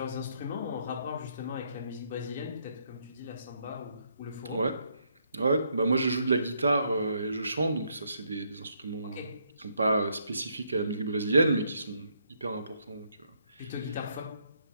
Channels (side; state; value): both; inverted; correlation -0.73